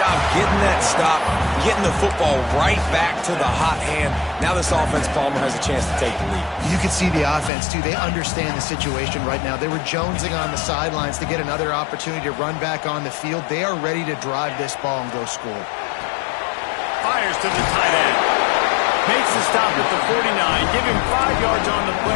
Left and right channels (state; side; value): drops out; right; at 7.5 s